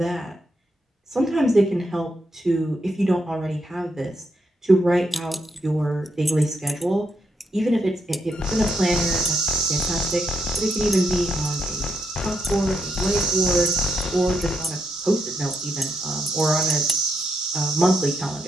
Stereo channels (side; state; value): both; normal; correlation 0.80